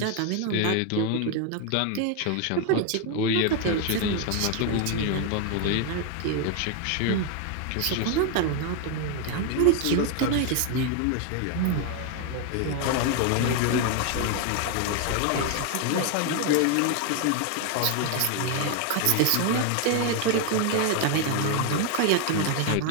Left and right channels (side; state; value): both; different; correlation 0.01